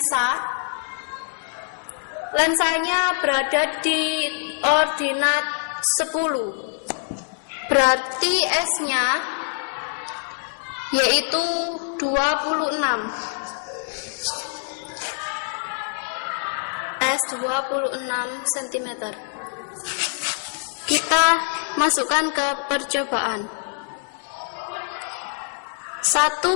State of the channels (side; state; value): right; silent; 62 dB below the other